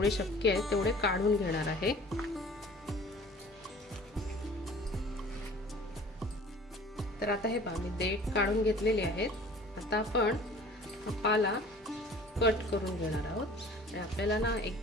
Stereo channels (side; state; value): both; normal; correlation 0.47